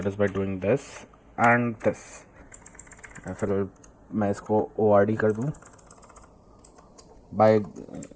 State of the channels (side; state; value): both; identical; correlation 1.00